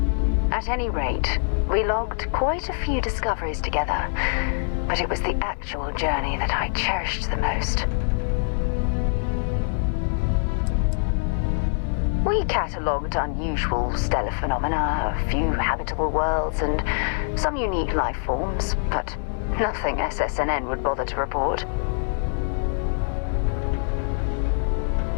At any rate, we logged quite a few discoveries together, but it was the actual journey that I cherished the most. We catalogued unusual stellar phenomena, a few habitable worlds, and some unique life forms, but nothing SSNN would bother to report.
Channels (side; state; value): right; silent; 62 dB below the other